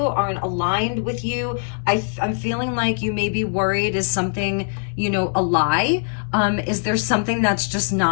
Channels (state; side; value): silent; right; digital silence